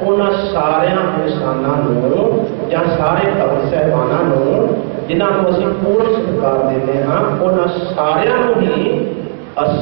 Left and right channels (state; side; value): silent; left; 64 dB below the other